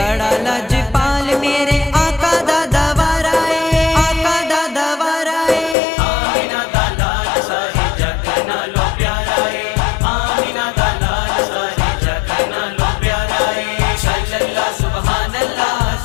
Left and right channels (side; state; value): right; drops out; at 5.8 s